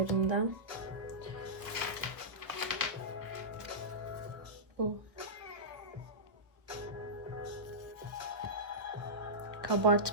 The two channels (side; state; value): left; late; 1.3 ms